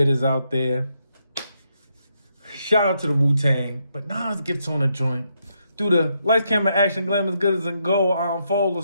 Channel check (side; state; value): both; inverted; correlation -0.78